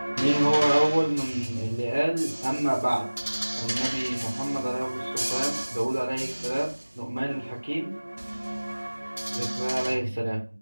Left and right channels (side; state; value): both; inverted; correlation -1.00